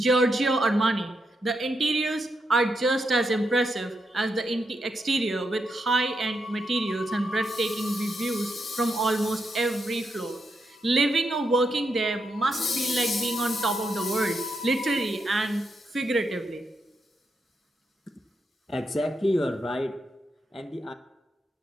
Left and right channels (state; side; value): normal; both; correlation 0.82